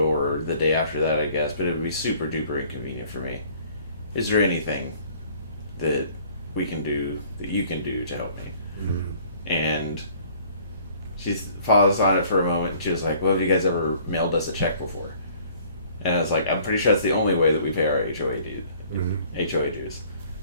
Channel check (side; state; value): both; inverted; correlation -0.55